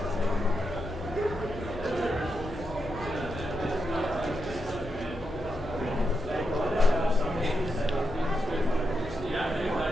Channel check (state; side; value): normal; both; correlation 0.85